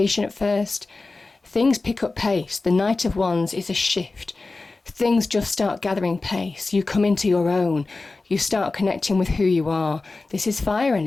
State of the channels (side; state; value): right; quieter; 3.5 dB